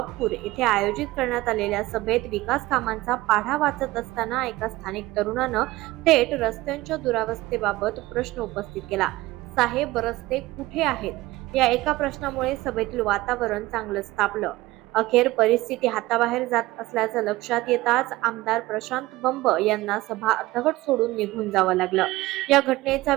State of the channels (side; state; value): left; quieter; 18.7 dB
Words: येथे आयोजित करण्यात आलेल्या सभेत विकास कामांचा पाढा वाचत असताना एका स्थानिक तरुणानं थेट रस्त्यांच्या दुरावस्थेबाबत प्रश्न उपस्थित केला. साहेब रस्ते कुठे आहेत? या एका प्रश्नामुळे सभेतील वातावरण चांगलंच तापलं. अखेर परिस्थिती हाताबाहेर जात असल्याचं लक्षात येताच आमदार प्रशांत बंब यांना सभा अर्धवट सोडून निघून जावं लागलं. या घटनेचा